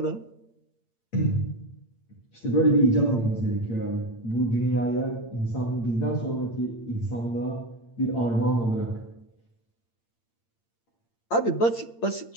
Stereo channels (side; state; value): right; late; 8.7 ms